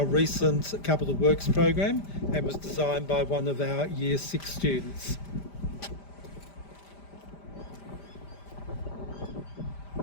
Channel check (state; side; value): late; right; 5.0 ms